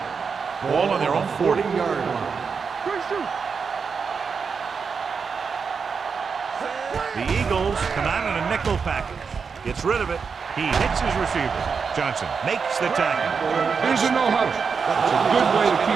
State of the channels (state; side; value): quieter; left; 5.6 dB